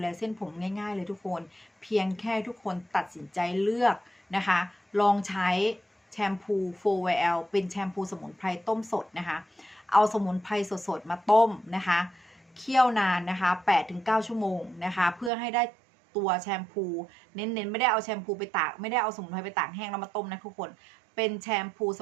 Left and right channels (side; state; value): left; drops out; at 15.3 s